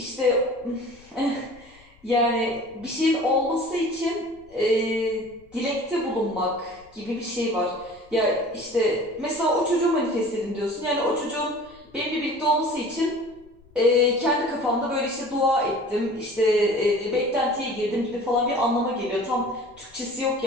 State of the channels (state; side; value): noise; left; rumble, 28 dB below the sound